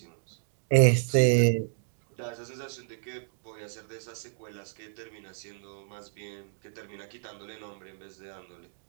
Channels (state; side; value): silent; left; digital silence